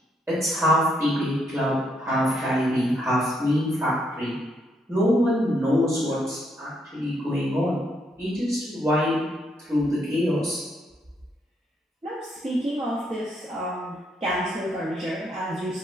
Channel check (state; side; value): normal; both; correlation 0.75